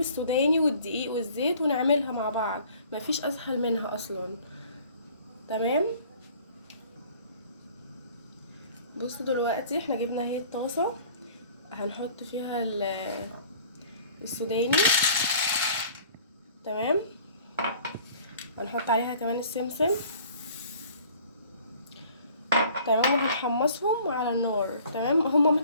والدقيق والزيت ونعملها مع بعض. مفيش اسهل منها اصلا. تمام. بصوا دلوقتي احنا جبنا اهي الطاسه، هنحط فيها السوداني. تمام. هنحط عليها كمان السمسم. تمام، وهنحمصهم على النار. تمام، هما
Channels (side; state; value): both; inverted; correlation -0.51